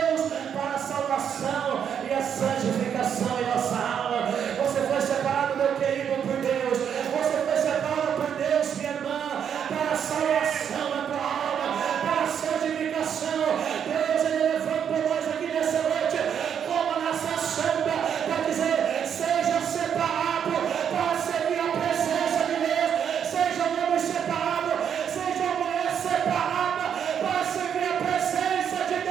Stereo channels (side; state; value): left; quieter; 8.2 dB